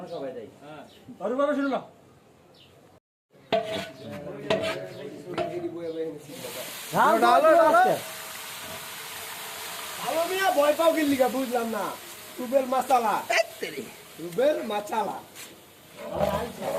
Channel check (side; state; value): both; identical; correlation 1.00